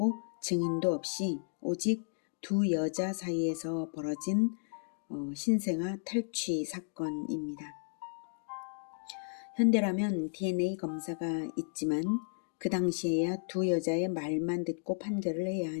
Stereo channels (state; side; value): silent; right; digital silence